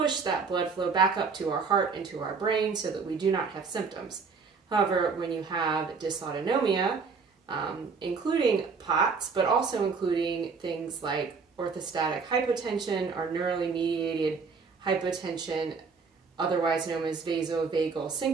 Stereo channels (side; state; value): left; quieter; 5.0 dB